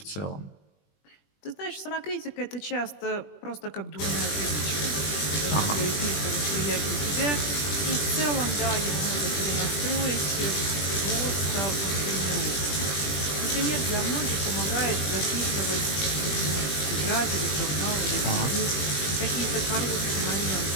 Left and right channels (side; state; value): right; late; 20 ms